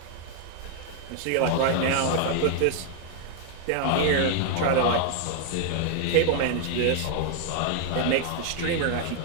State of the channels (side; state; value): both; different; correlation 0.00